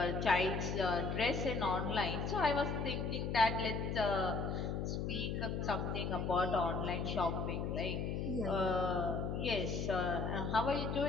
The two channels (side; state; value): left; noise; hum, 1 dB below the sound